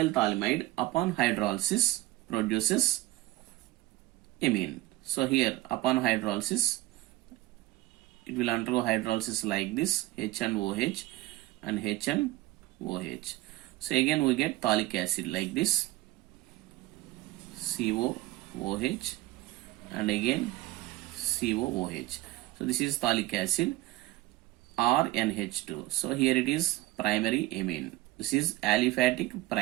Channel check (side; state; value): left; quieter; 18.0 dB